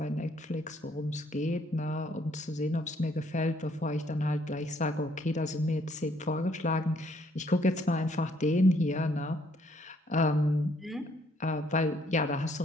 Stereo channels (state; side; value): normal; both; correlation 0.66